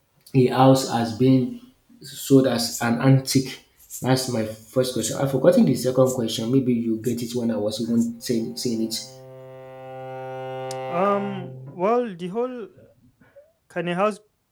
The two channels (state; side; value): identical; both; correlation 1.00